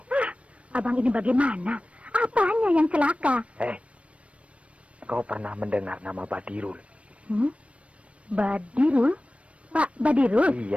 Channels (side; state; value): left; late; 0.062 ms